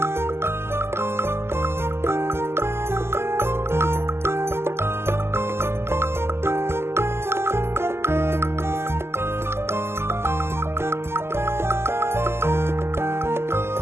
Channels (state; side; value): late; left; 0.12 ms